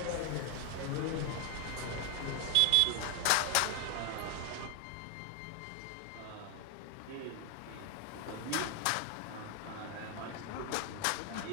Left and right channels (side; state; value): both; different; correlation 0.00